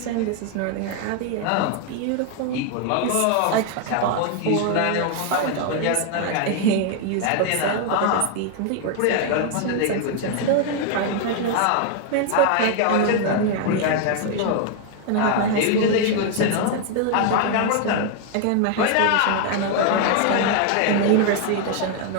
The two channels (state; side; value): different; both; correlation 0.00